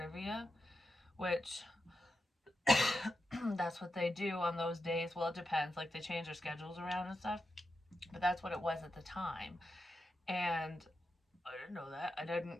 which that's what they do on those days. Well, it depends. Like they change their schedules around and stuff. But that's what it was at the time. And I didn't know that. I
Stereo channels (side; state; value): both; normal; correlation 0.88